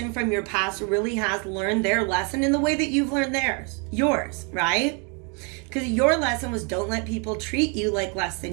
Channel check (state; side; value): quieter; left; 35.5 dB